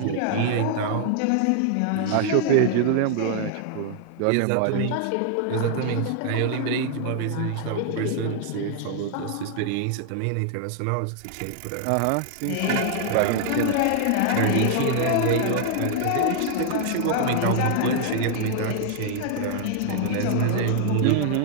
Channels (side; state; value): both; different; correlation 0.00